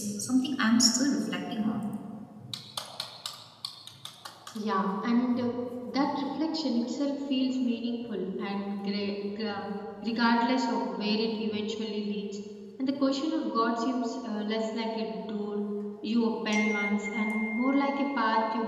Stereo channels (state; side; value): identical; both; correlation 1.00